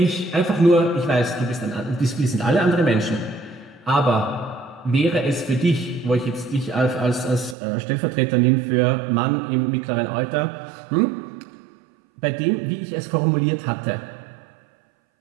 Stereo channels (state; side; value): drops out; left; at 7.6 s